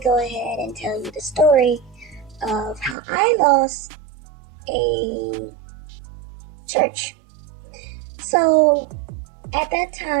go ahead and tell you the story of how I lost a church. So, at that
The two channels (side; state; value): left; drops out; at 3.0 s